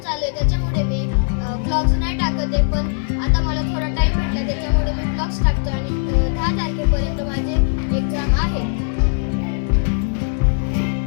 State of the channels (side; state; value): right; silent; 66 dB below the other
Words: चालू आहे त्याच्यामुळे मी ब्लॉग्स नाही टाकत आहे, पण आता मला थोडा टाइम भेटला त्याच्यामुळे मी ब्लॉग्स टाकतो आणि 10 तारखेपर्यंत माझे एक्झाम आहे.